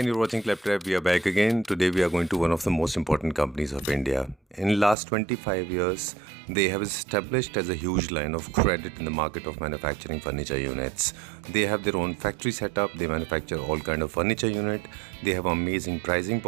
you're watching Claptrap. We are back again. Today, we are going to one of the most important companies of India. In last 25 years, they have established as a huge line of credit in the market of manufacturing furniture units. They have their own factory setup. They manufacture all kind of furniture unit. They have amazing pricing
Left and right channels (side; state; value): left; drops out; at 5.0 s